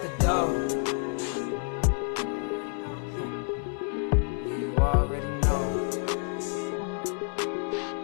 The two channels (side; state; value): right; silent; 55 dB below the other